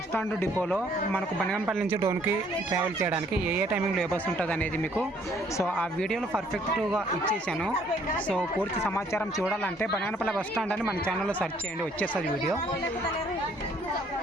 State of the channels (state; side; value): normal; both; correlation 0.63